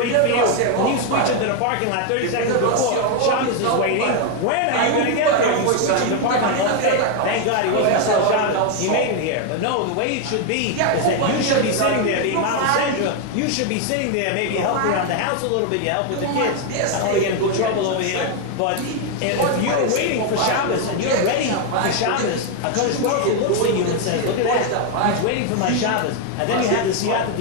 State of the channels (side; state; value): both; different; correlation 0.01